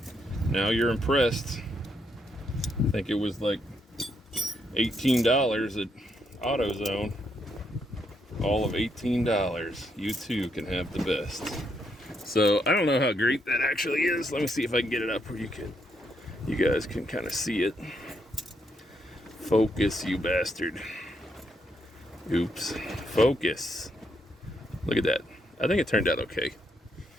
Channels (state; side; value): normal; both; correlation 0.77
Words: Now you're impressed. I think it was like $18 at AutoZone. All of $18. You too can have the best. So I don't know how great that actually is. Let me see if I can get it up where you guys can kind of see it. Focus, you bastard. Oops. Focus. Look at that. I think it turned out okay.